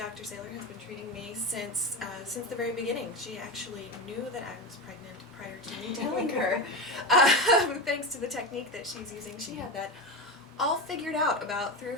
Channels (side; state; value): both; normal; correlation 0.19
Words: Saylor has been treating me since the very beginning. She actually knew that I was pregnant prior to me telling her. Thanks to the technique that she's using, she had that all figured out about 3 or